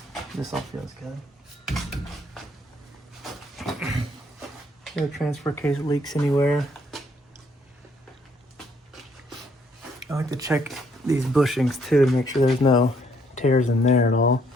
This all feels good. No transfer case leaks anywhere. I like to check these bushings too to make sure there's no tears in there at all.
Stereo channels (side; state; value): both; normal; correlation 0.68